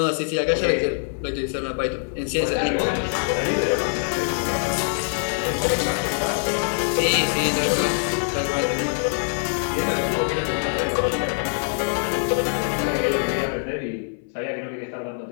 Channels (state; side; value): silent; right; 63 dB below the other